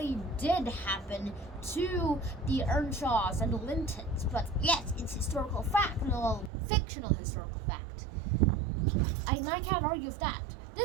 did happen to the Earnshaws and the Lintons. But yes, it's historical fact, no fictional historical fact. I can't argue with that.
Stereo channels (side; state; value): left; drops out; at 6.5 s